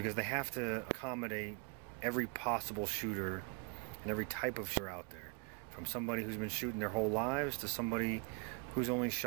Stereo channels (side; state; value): left; quieter; 30.7 dB